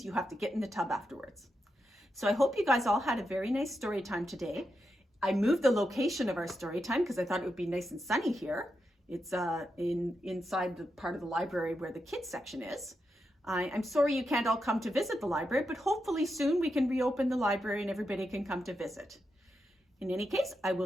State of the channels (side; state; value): both; normal; correlation 0.86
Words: you have to get in the tub afterwards. So I hope you guys all had a very nice story time today. I moved the location of our story time because I thought it would be nice and sunny here. It's inside the part of the library where the kids section is. I'm sorry you can't all come to visit the library, but hopefully soon we can reopen the library and everybody can come to visit. In any case, I